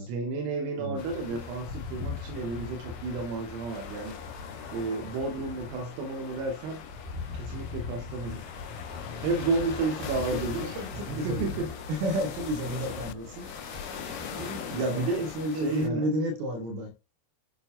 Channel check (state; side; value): late; left; 26 ms